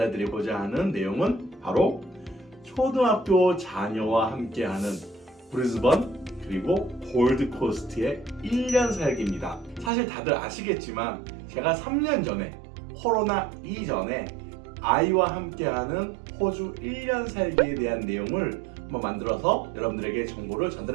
드리고자 하는 내용은 바로 초등학교 자녀와 함께하는 브리즈번 그리고 골드코스트의 1년 살기입니다. 사실 다들 아시겠지만 제가 3년 전에 코로나 이전에 아이와 함께하는 호주 1년 살기에 대한 내용을 한번 만들어서 여러분들에게 정보를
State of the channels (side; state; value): left; drops out; at 9.9 s